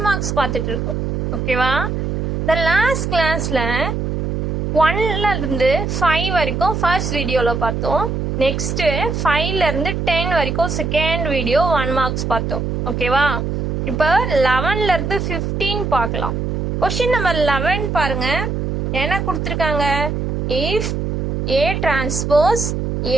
மார்க்ஸ் பார்த்துட்டு இருக்கோம். ஓகேவா? இந்த லாஸ்ட் கிளாஸில் 1லேருந்து 5 வரைக்கும் ஃபர்ஸ்ட் வீடியோவில் பார்த்தோம். நெக்ஸ்ட்டு 5லேருந்து 10 வரைக்கும் செகண்ட் வீடியோ 1 மார்க்ஸ் பார்த்தோம். ஓகேவா? இப்போ 11லேருந்து 15 பார்க்கலாம். கொஷின் நம்பர் 11 பாருங்க. என்ன கொடுத்துருக்காங்க? If A transpose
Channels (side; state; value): right; noise; hum, 1 dB below the sound